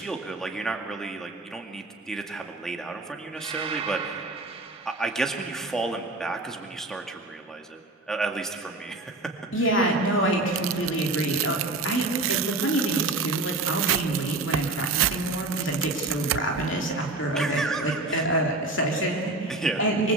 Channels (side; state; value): left; quieter; 3.0 dB